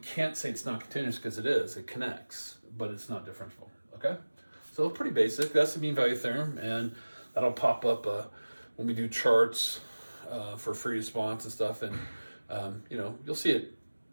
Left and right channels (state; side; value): inverted; both; correlation -1.00